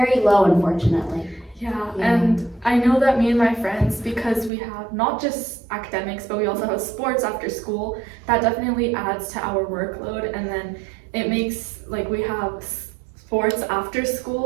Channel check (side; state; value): left; drops out; at 4.5 s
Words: low, unfortunately. Yeah, and I know that me and my friends, because we have not just academics, but we also have sports after school, that definitely adds to our workload, and then it makes, like, we have sports after